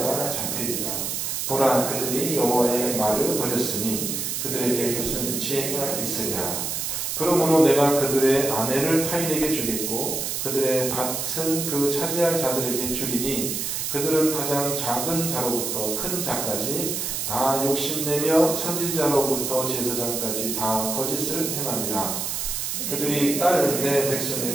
잡히리라. 보라, 그들이 여호와의 말을 버렸으니 그들에게 무슨 지혜가 있으랴. 그러므로 내가 그들의 아내를 타인에게 주겠고 그들의 밭은 그 차지할 자들에게 주리니 그들은 가장 작은 자로부터 큰 자까지 다 욕심내며 선지자로부터 제사장까지 다 거짓을 행함이라. 그들이 딸 내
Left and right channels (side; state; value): right; noise; hiss, 2 dB below the sound